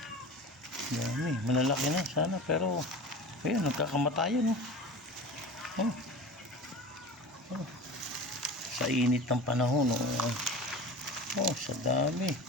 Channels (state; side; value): normal; both; correlation 0.34